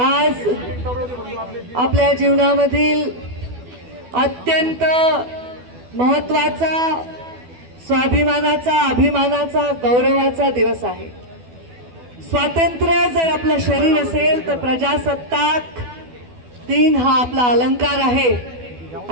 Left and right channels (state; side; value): late; left; 12 ms